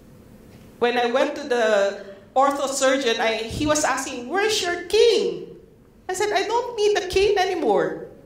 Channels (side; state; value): both; identical; correlation 1.00